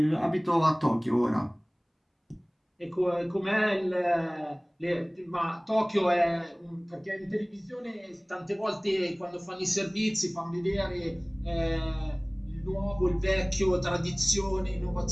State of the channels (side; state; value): both; identical; correlation 1.00